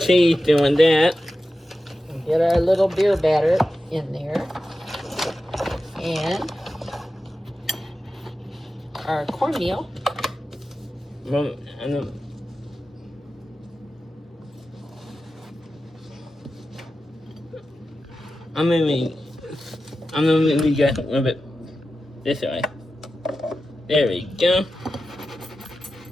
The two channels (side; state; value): both; normal; correlation 0.92